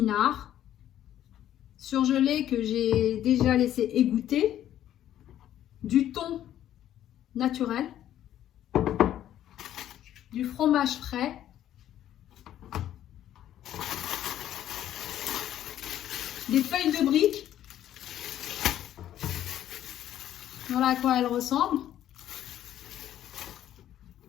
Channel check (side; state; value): right; quieter; 11.8 dB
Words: surgelés que j'ai déjà laissé égoutter, du thon naturel, du fromage frais, des feuilles de briques. Voilà à quoi elles ressemblent.